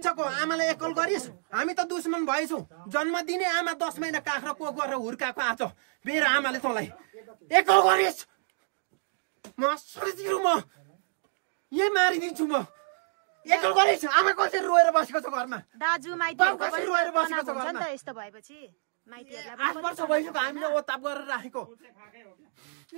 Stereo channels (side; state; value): left; silent; digital silence